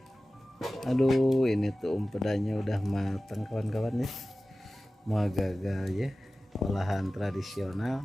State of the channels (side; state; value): both; normal; correlation 0.96